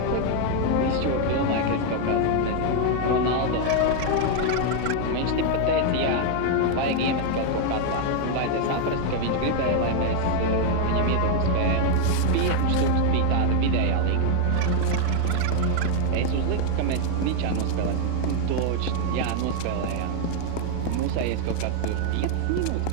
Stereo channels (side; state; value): both; different; correlation 0.00